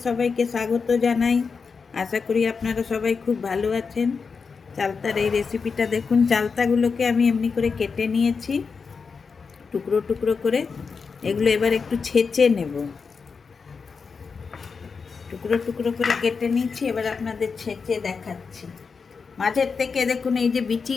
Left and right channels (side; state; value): right; quieter; 5.2 dB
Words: সবাইকে স্বাগত জানাই। আশা করি আপনারা সবাই খুব ভালো আছেন। চালতার এই রেসিপিটা দেখুন, চালতাগুলোকে আমি এমনি করে কেটে নিয়েছি টুকরো টুকরো করে। এগুলো এবার একটু ছেঁচে নেব। টুকরো টুকরো করে কেটে নিয়েছি, এবার আপনাদের ছেঁচে দেখাচ্ছি। মাঝের থেকে দেখুন এই যে